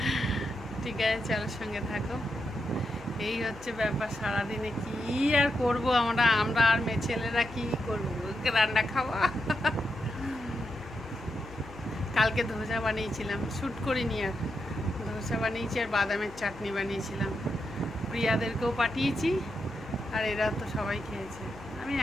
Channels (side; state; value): left; noise; hum, 18 dB below the sound